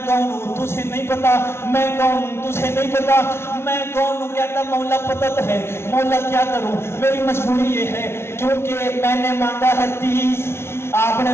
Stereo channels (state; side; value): late; right; 0.12 ms